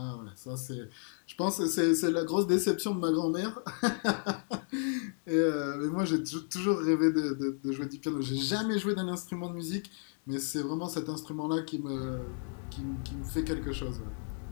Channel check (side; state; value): right; silent; 56 dB below the other